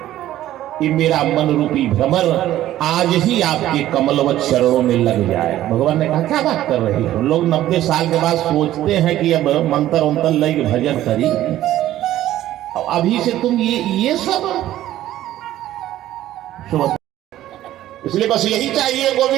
कि मेरा मन रूपी भ्रमर आज ही आपके कमलवत चरणों में लग जाए। भगवान ने कहा क्या बात कर रही हो, लोग 90 साल के बाद सोचते हैं कि अब मंत्र उंतर लग भजन करी, अभी से तुम ये सब। इसलिए बस यही चाहिए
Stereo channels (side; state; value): left; quieter; 13.6 dB